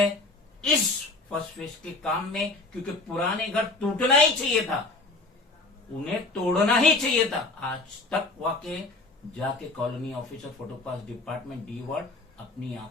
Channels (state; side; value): quieter; right; 3.3 dB